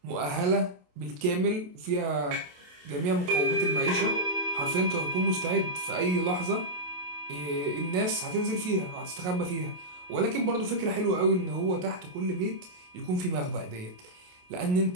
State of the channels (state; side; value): late; left; 28 ms